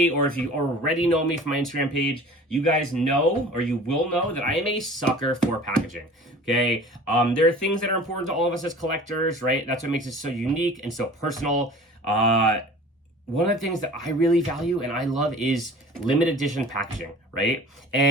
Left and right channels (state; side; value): normal; both; correlation 0.43